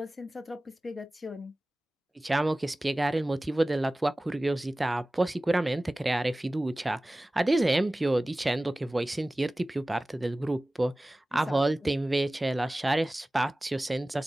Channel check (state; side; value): normal; both; correlation 0.97